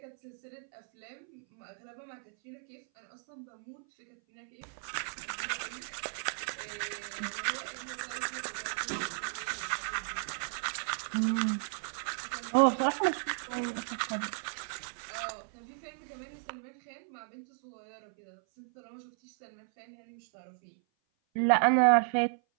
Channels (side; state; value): left; silent; 55 dB below the other